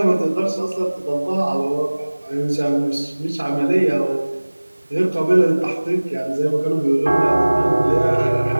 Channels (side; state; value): both; inverted; correlation -1.00